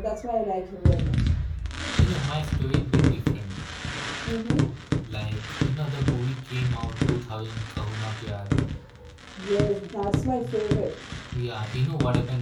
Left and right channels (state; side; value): identical; both; correlation 1.00